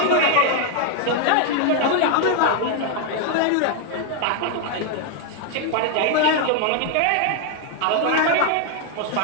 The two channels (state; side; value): different; both; correlation 0.00